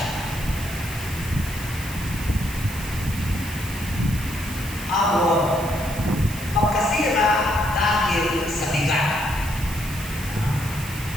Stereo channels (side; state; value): right; noise; hiss, 12 dB below the sound